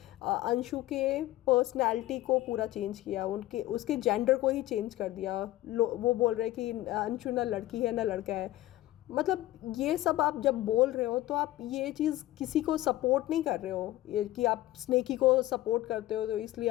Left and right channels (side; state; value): right; quieter; 15.9 dB